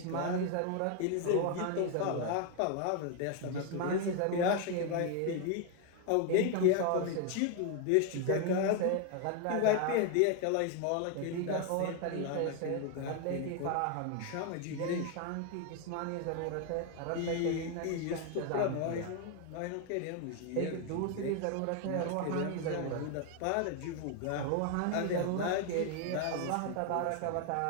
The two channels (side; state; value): both; different; correlation 0.01